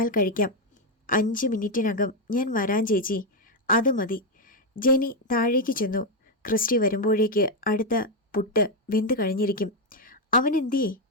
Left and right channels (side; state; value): both; normal; correlation 0.04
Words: കഴിക്കാം. 5 മിനിറ്റിനകം ഞാൻ വരാൻ ചേച്ചി. അത് മതി. ജെനി താഴേക്ക് ചെന്നു. ക്രിസ്റ്റി വരുമ്പോഴേക്ക് അടുത്ത പുട്ട് വെന്ത് കഴിഞ്ഞിരിക്കും. അവൻ എന്തിയേ?